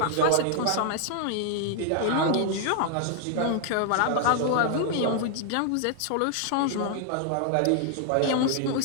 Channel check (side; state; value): both; different; correlation 0.00